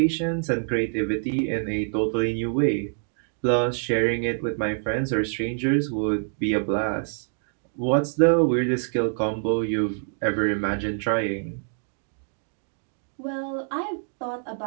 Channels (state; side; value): silent; left; 61 dB below the other